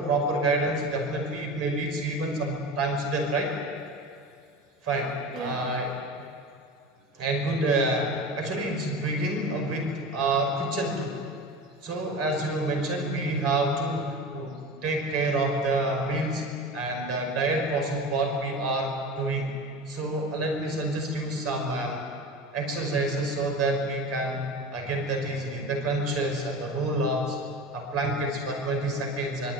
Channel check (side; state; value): both; normal; correlation 0.31